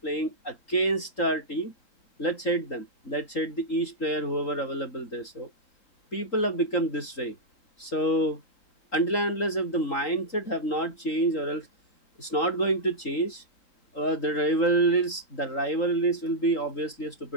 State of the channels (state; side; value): late; right; 3.8 ms